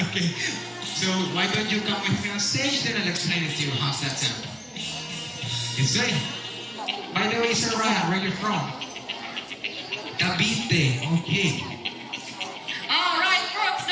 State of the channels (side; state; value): both; identical; correlation 1.00